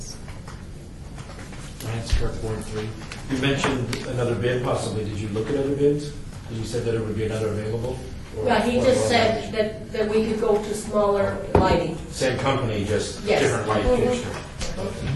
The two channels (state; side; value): identical; both; correlation 1.00